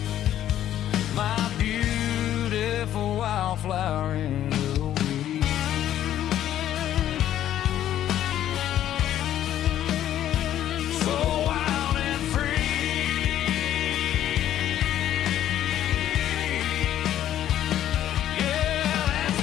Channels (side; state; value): right; quieter; 11.7 dB